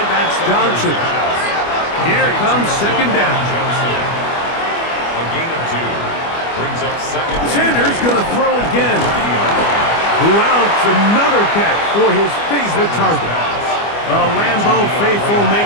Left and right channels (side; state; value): right; late; 25 ms